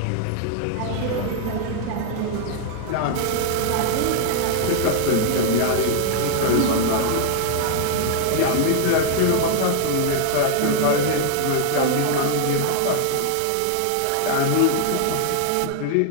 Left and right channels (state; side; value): different; both; correlation 0.00